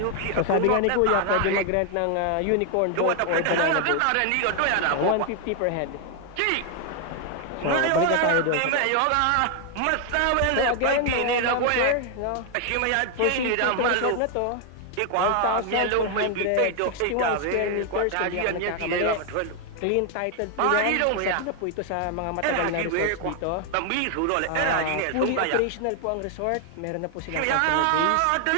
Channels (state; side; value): different; both; correlation 0.00